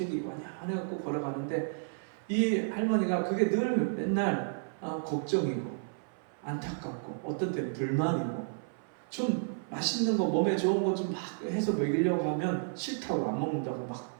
완연해갖고 걸어가는데 이 할머니가 그게 늘 맨날 걱정이고 안타깝고 어떤 때는 불만이고 좀 맛있는 거 몸에 좋은 거 좀 막 해서 먹이려고 하면 싫다고 안 먹는다고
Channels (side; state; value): left; silent; 56 dB below the other